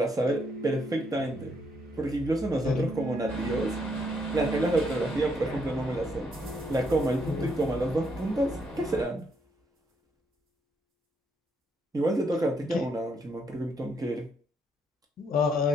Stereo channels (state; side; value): normal; both; correlation 0.74